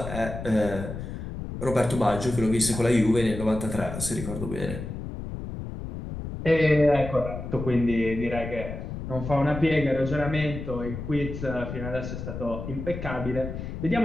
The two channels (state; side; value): noise; left; rumble, 7 dB below the sound